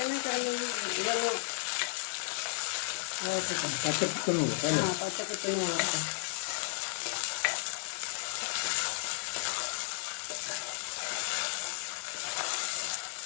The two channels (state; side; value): silent; right; 56 dB below the other